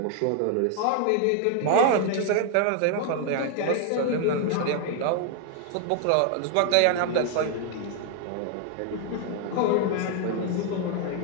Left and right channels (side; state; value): both; different; correlation 0.00